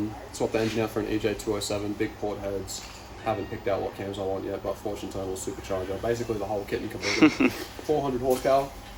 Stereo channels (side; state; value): both; identical; correlation 1.00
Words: the engine out for an EJ207, big port heads. Haven't picked out what cams I want yet, but fortune total supercharger. Basically, the whole kit and caboodle. 400 horsepower.